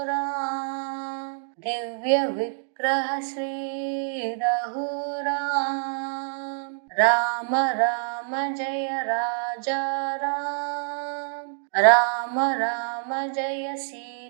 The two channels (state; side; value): silent; left; digital silence